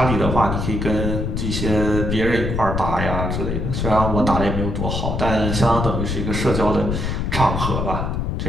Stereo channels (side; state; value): left; noise; rumble, 1 dB below the sound